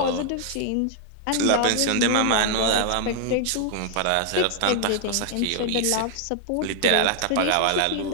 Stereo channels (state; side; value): different; both; correlation 0.00